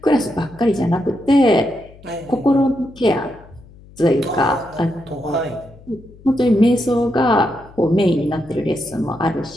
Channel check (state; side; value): noise; left; hum, 23 dB below the sound